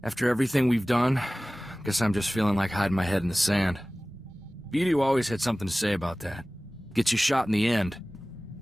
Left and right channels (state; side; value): normal; both; correlation 0.98